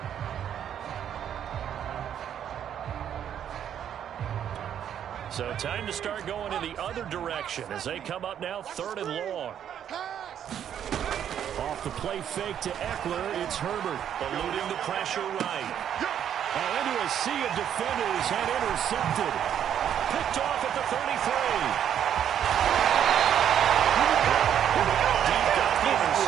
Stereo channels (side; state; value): left; quieter; 9.5 dB